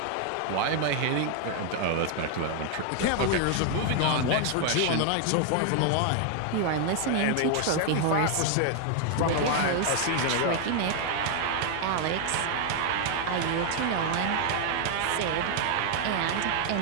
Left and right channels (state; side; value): different; both; correlation 0.00